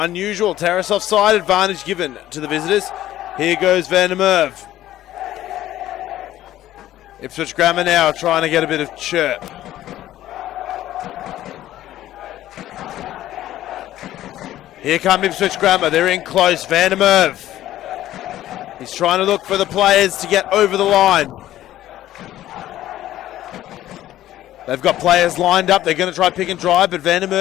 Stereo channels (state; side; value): quieter; right; 13.6 dB